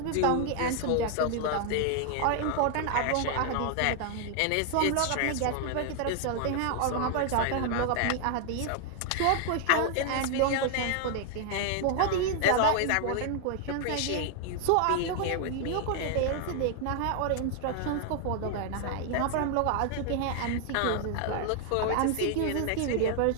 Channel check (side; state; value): both; different; correlation 0.00